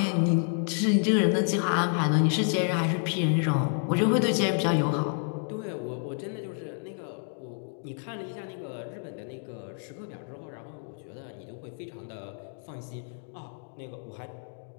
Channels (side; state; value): right; silent; 58 dB below the other